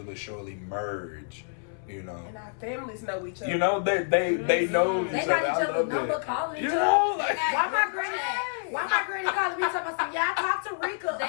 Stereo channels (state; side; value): silent; right; 60 dB below the other